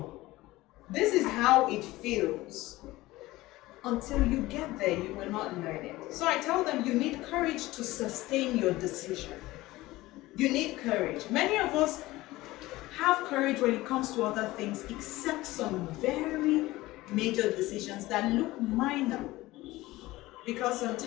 this is how it feels. Until you get there, you will not learn it. So I tell them, you need courage to sustain your decision. You need courage. Many of us have courage when it comes to other things, except some very major decisions that look minor. Because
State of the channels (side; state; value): right; quieter; 18.5 dB